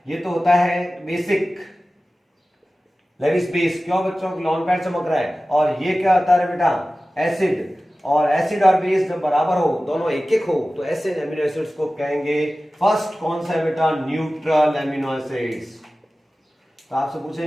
ये तो होता है बेसिक लेविस बेस। क्यों बच्चों, लॉन पैड चमक रहा है। और ये क्या होता है बेटा, एसिड। और एसिड और बेस जब बराबर हो, दोनों एक एक हो, तो ऐसे एमिनो एसिड्स को कहेंगे फर्स्ट कौन सा है बेटा, न्यूट्रल एमिनो एसिड्स। तो आपसे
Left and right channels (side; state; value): both; normal; correlation 0.96